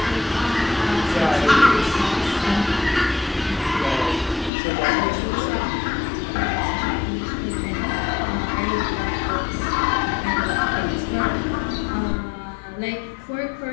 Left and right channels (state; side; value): drops out; right; at 4.5 s